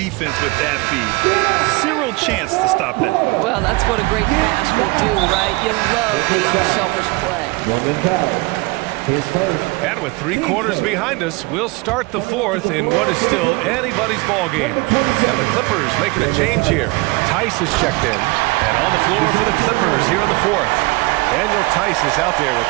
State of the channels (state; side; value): quieter; left; 24.9 dB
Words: with that feed. 0 chance to stop that. Well, that's what a great pass will do, right? You love the unselfish play. And with 3 quarters behind us, we'll start the fourth in what is still anybody's ball game. And the Clippers making a change here. Tice is checked in. And on the floor for the Clippers here in the fourth. Daniel Tice is out there with